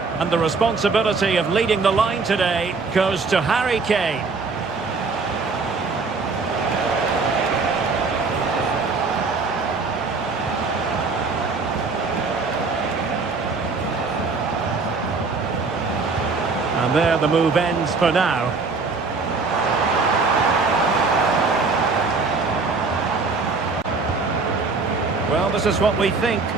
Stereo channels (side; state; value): left; quieter; 4.2 dB